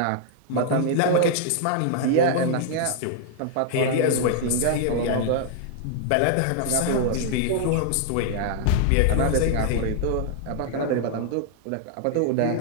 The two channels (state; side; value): different; both; correlation -0.01